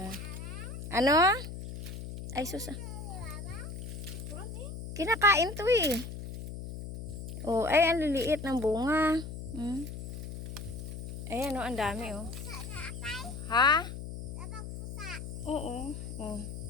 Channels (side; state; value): left; noise; hum, 8 dB below the sound